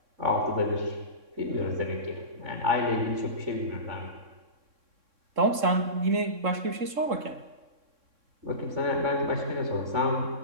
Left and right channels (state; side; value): late; left; 3.7 ms